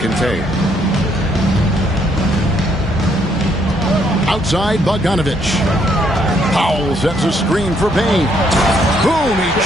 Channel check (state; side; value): normal; both; correlation 0.70